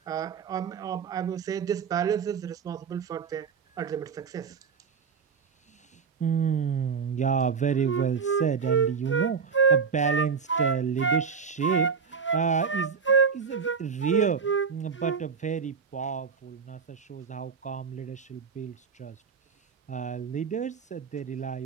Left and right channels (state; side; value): quieter; left; 6.0 dB